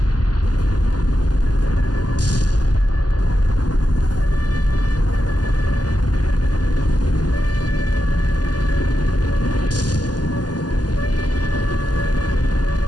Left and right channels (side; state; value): right; late; 0.69 ms